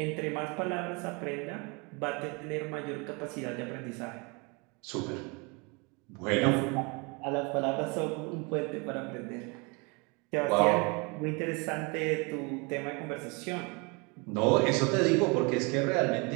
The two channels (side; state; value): left; quieter; 30.1 dB